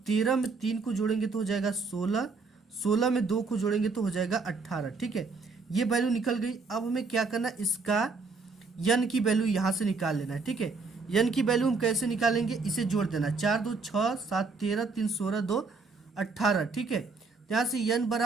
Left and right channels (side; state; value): left; quieter; 4.2 dB